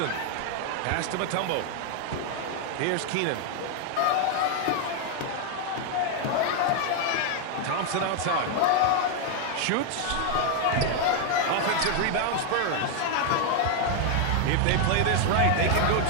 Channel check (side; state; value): both; different; correlation 0.00